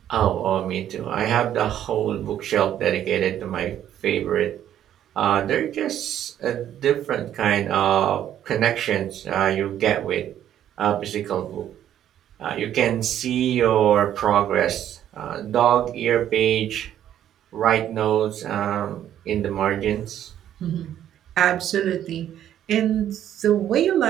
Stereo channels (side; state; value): left; quieter; 10.9 dB